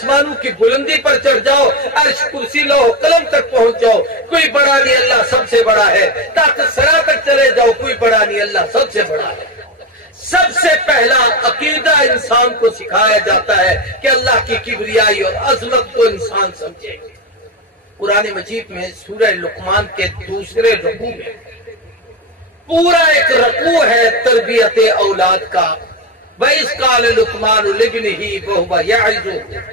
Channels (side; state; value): both; normal; correlation 0.16